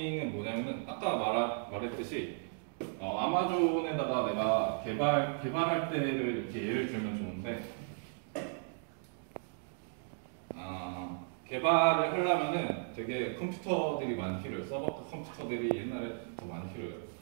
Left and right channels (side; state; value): left; silent; digital silence